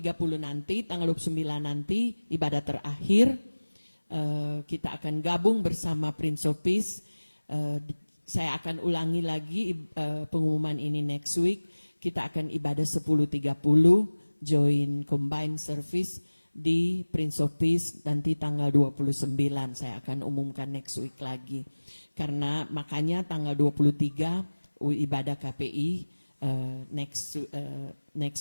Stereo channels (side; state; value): both; inverted; correlation -1.00